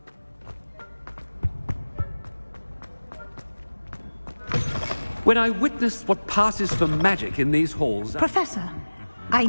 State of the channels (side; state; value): both; inverted; correlation -1.00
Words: When I witnessed what passes for magic in these halls... Professor, I